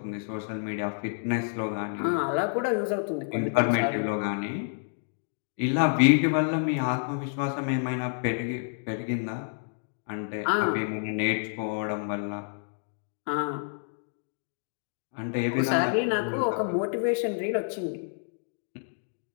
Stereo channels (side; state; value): right; silent; digital silence